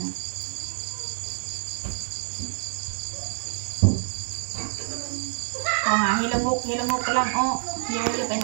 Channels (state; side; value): silent; left; digital silence